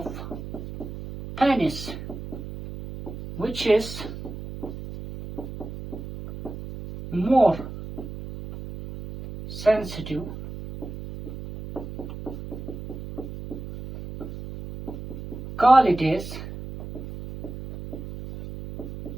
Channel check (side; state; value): right; noise; hum, 10 dB below the sound